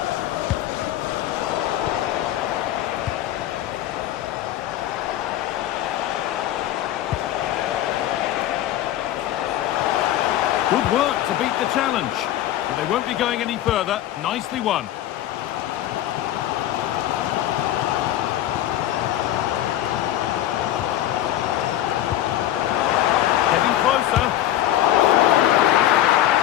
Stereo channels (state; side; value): quieter; right; 12.9 dB